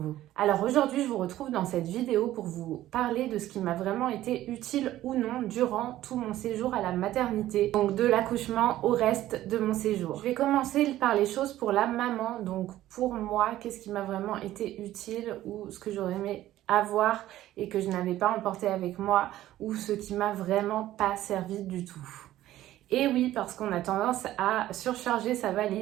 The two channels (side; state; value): left; quieter; 14.2 dB